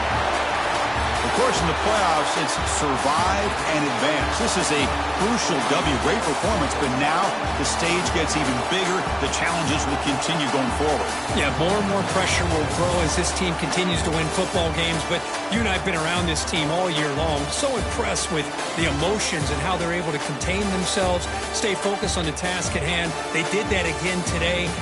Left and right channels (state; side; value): identical; both; correlation 1.00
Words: Of course, in the playoffs, it's survive and advance. This is a crucial W. Great performance, but now the stage gets even bigger. The challenges will continue going forward. Yeah, more and more pressure will grow as this team continues to win football games. But you and I have been around this team all year long. So impressed with the emotions and how they're able to contain themselves, stay focused on the task at hand. They did that again today.